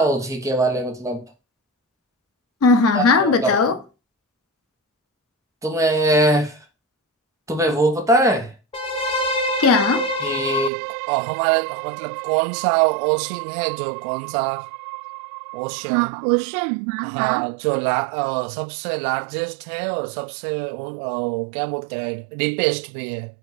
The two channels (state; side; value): drops out; left; at 10.7 s